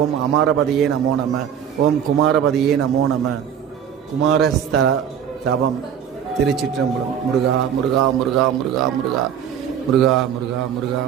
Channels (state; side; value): quieter; left; 8.7 dB